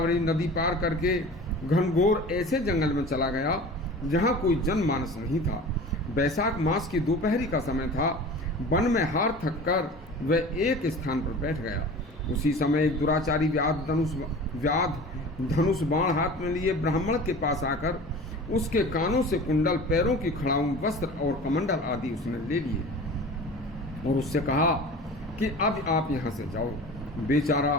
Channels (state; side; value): normal; both; correlation 0.38